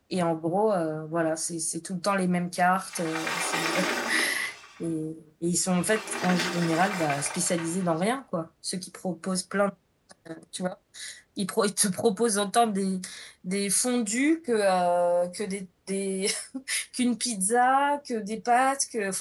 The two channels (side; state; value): both; identical; correlation 1.00